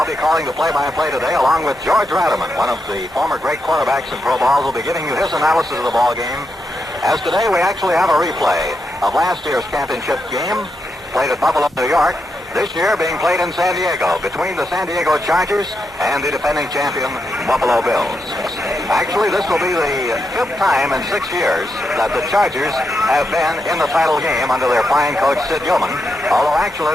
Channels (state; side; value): normal; both; correlation 0.84